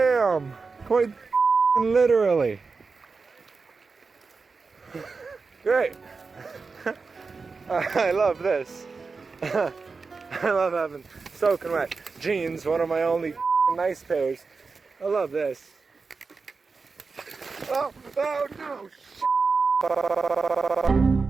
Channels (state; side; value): quieter; left; 4.5 dB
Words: Quite literally. Great. I love this. I love having soaking wet jeans, one of my only nice pairs. I love this. Oh no.